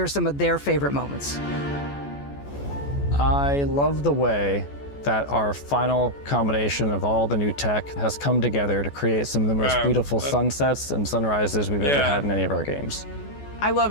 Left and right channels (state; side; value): late; right; 14 ms